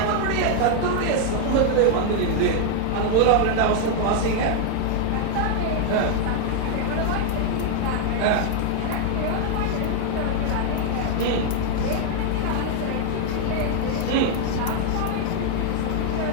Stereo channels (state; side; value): different; both; correlation 0.00